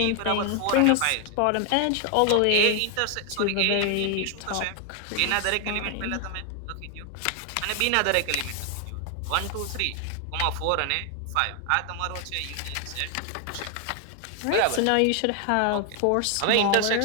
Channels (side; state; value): both; different; correlation 0.00